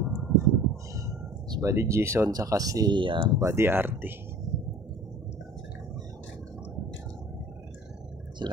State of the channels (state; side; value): normal; both; correlation 0.45